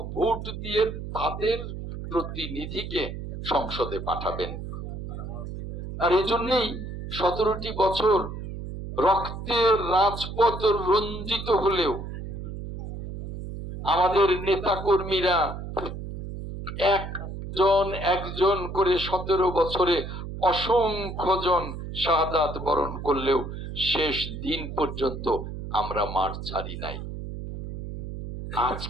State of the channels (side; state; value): right; noise; hum, 8 dB below the sound